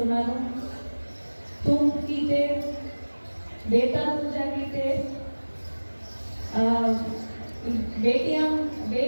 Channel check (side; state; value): both; inverted; correlation -1.00